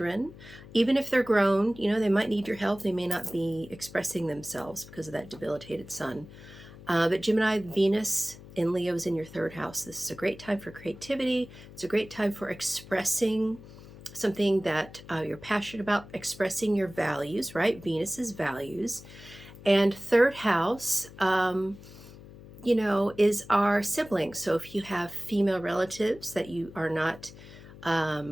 Even if they're grown, they might need your help. They may not be expressing themselves because of that debilitated sun. But Gemini, Venus in Leo is in your 3rd house. This is a great time for creativity. It's a great time for expressing something that you're passionate about, expressing your values, right? Venus's values. And 3rd house, is our siblings. So if you have female relatives that you are not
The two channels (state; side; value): noise; left; hum, 18 dB below the sound